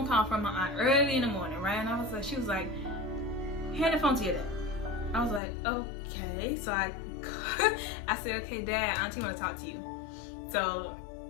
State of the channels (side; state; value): right; drops out; at 5.4 s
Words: call from my aunt early in the morning, right? And I was like, she was like, hand the phone to your dad. I was like, okay. So I said, okay, Dad, Auntie want to talk to you. So